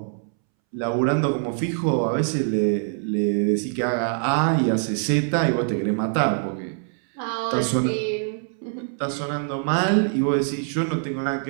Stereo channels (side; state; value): left; silent; 63 dB below the other